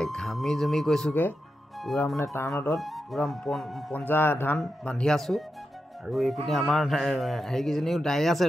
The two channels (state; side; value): normal; both; correlation 0.88